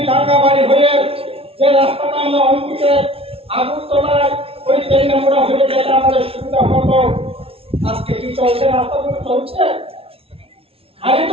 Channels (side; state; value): left; late; 0.27 ms